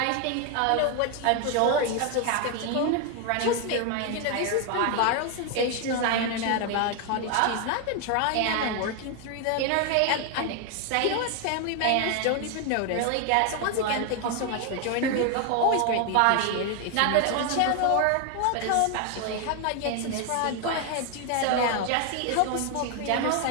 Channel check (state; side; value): different; both; correlation 0.01